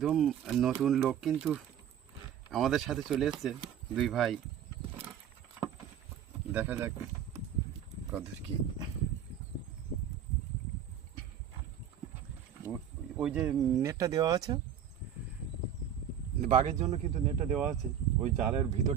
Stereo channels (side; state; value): left; quieter; 9.0 dB